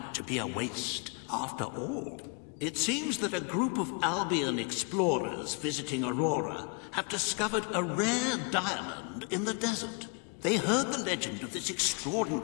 to be a waste after all. It seems that a group of Albion explorers visiting Aurora have discovered a rare diamond in the desert. They heard the legend of this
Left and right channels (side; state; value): right; quieter; 36.4 dB